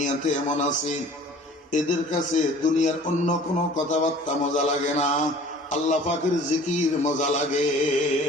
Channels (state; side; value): normal; both; correlation 0.48